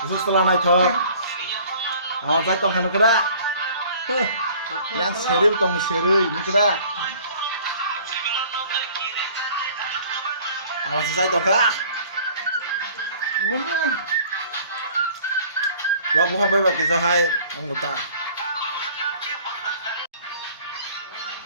usus telah naik thok awan sai tong khanu kada yang seril tong serei nikda awan sai tong ka wah bukan bebek kisah hai anggota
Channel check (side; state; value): both; inverted; correlation -0.51